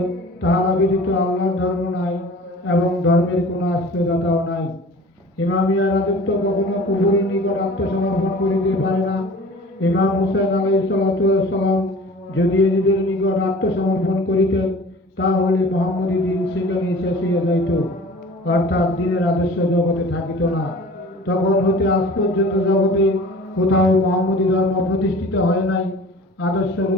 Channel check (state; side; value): normal; both; correlation 0.43